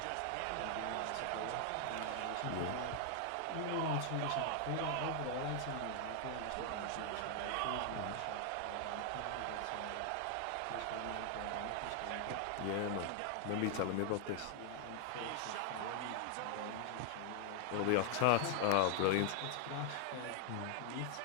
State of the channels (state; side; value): different; both; correlation 0.00